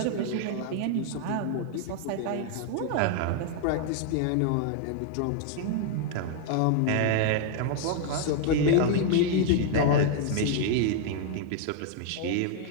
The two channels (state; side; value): different; both; correlation 0.00